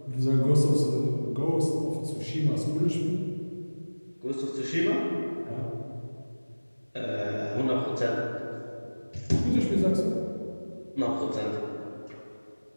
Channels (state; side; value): inverted; both; correlation -1.00